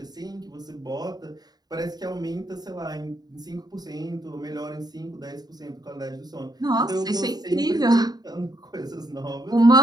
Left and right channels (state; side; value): late; left; 0.19 ms